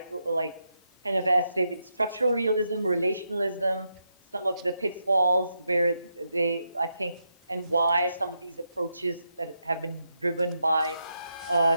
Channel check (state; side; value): inverted; both; correlation -0.83